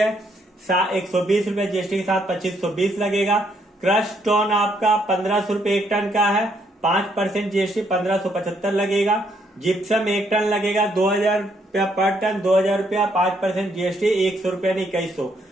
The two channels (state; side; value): normal; both; correlation 0.72